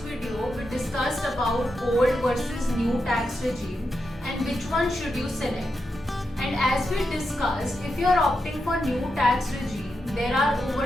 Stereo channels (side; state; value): both; normal; correlation 0.86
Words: video, we discussed about old versus new tax regime and which one should you select. And as we discussed, if you are opting for new tax regime, there are